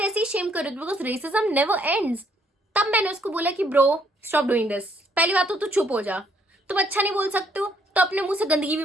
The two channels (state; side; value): normal; both; correlation 0.68